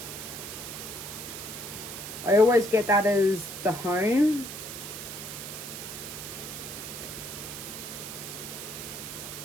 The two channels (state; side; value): noise; right; hiss, 8 dB below the sound